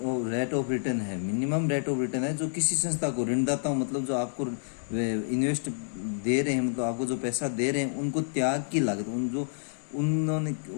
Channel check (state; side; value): silent; right; digital silence